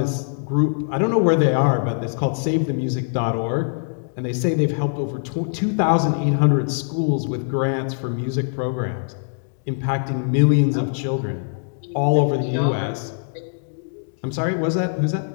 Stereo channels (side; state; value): right; silent; digital silence